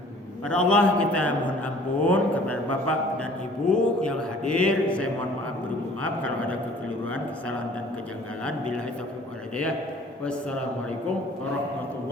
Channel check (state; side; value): normal; both; correlation 0.52